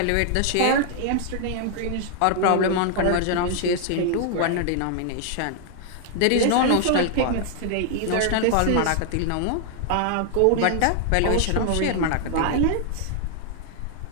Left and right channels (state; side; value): different; both; correlation 0.00